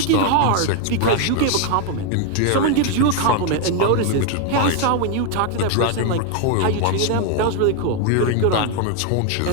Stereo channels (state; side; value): different; both; correlation 0.01